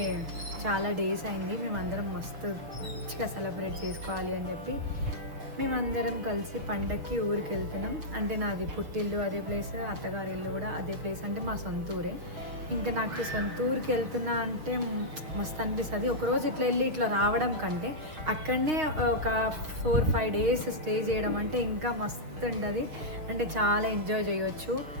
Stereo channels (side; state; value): left; late; 6.4 ms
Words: చాలా డేస్ అయింది, మేమందరం మస్తు మంచిగా సెలబ్రేట్ చేసుకోవాలి అని చెప్పి మేమందరం కలిసి పండక్కి ఊరికి వెళ్తున్నాం. అంటే నాది పుట్టిల్లు అదే ప్లేస్, అత్తగారి ఇల్లు కూడా అదే ప్లేస్, అంటే మా సొంత ఊరే. ఇంకా నాకు సొంత ఊరికి వెళ్తున్నా అంటే మస్తు అనిపిస్తుంది. ఒకరోజు ఇట్లా వెళ్ళి ఇట్లా రావడం కంటే అక్కడనే ఒక 4-5 డేస్ స్టే చేయడం అంటే ఇంకా మస్తు ఉంటుంది. అంటే చాలా ఎంజాయ్ చేయొచ్చు,